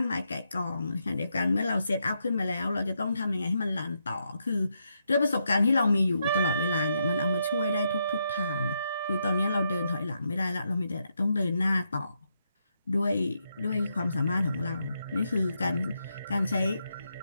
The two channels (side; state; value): both; inverted; correlation -0.81